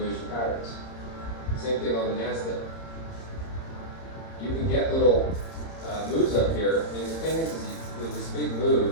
patterns. Same thing on the NASDAQ. You can get little moves up here. I mean, the thing is with this big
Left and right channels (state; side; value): late; right; 30 ms